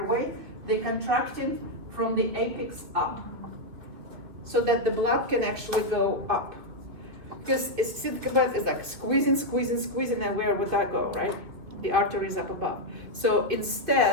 they contracting from the apex up, so that the blood can actually go up. Because think about it, it's like squeezing, and where would that go, right? The artery is up above. So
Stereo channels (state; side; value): late; left; 2.8 ms